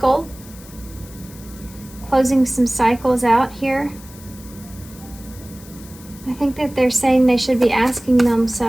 Closing some cycles out here. I think that they're saying they should be asking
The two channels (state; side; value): noise; left; hiss, 20 dB below the sound